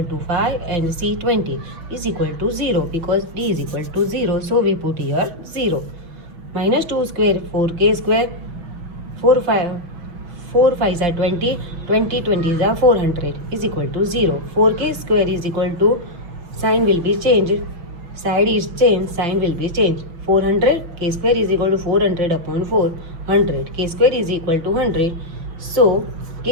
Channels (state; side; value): late; left; 6.1 ms